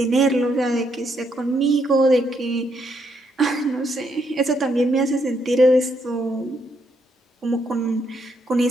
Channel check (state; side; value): normal; both; correlation 0.76